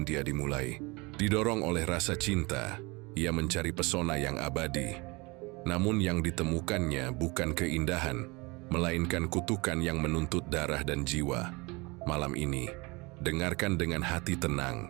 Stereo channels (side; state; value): left; quieter; 25.8 dB